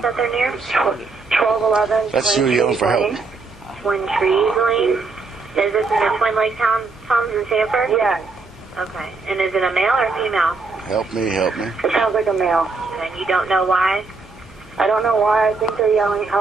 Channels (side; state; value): left; quieter; 4.0 dB